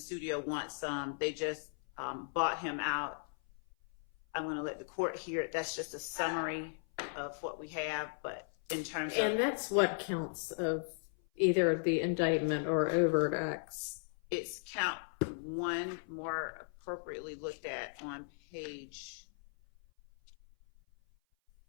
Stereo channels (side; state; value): right; silent; 53 dB below the other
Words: wants some. They just bought him out. I'm going to let the court hear it. That's just a summary of what we have, but in terms of... And that's what counts of either the indictment or overt acts. It's count 1, more appropriately looked at on page...